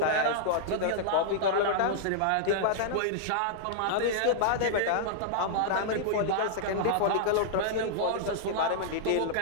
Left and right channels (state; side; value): different; both; correlation -0.02